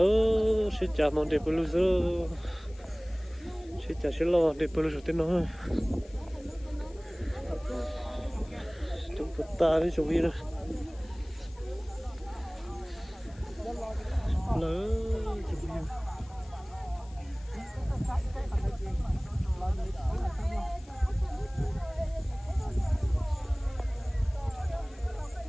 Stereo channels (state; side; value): noise; left; hiss, 26 dB below the sound